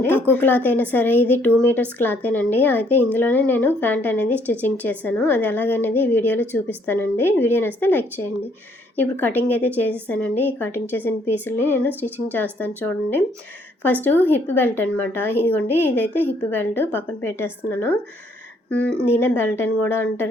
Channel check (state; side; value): normal; both; correlation 0.66